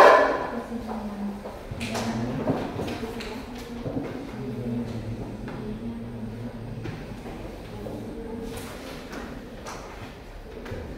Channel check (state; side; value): identical; both; correlation 1.00